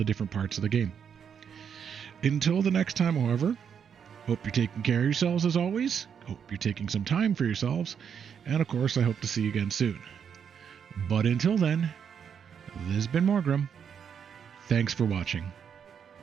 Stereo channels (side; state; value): left; quieter; 7.6 dB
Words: different parts of the game. Until the next time, however, hope you're taking care of yourselves as always. Hope you're taking some time for yourselves. And of course, I hope to see you again soon. But until then, this has been Morgrim. Thanks for watching.